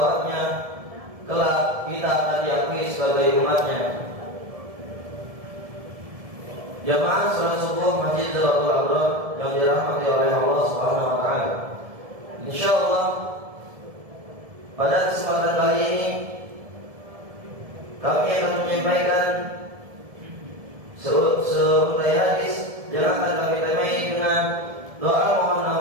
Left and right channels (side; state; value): left; late; 1.7 ms